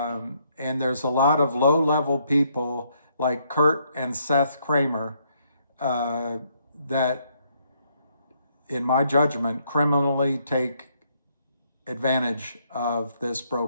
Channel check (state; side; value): inverted; both; correlation -0.72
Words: there's a lot of low-level people like Kurt and Seth Kramer that, in my judgment, criminally take advantage of this